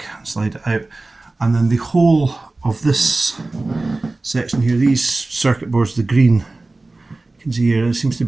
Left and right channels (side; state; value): left; quieter; 3.1 dB